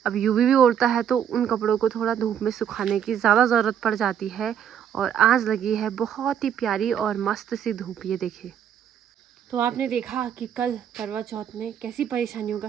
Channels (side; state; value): left; quieter; 9.0 dB